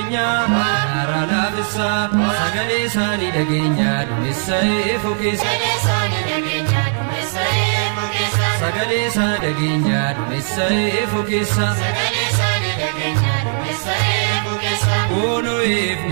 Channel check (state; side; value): silent; left; 67 dB below the other